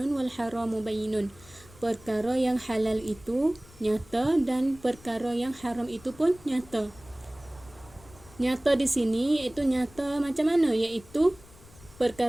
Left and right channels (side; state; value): left; noise; rumble, 23 dB below the sound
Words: wal haramu bayyinun. Perkara yang halal itu nyata dan perkara yang haram itu pun nyata. Nyata di sini iaitu nyata macam mana? Iaitu